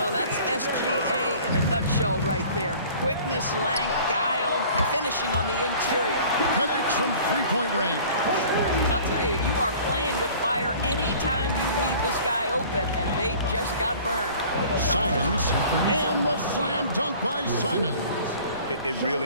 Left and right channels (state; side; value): inverted; both; correlation -0.47